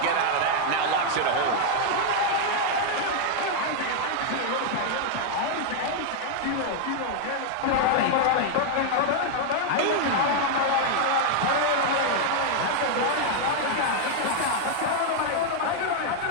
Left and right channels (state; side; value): different; both; correlation 0.00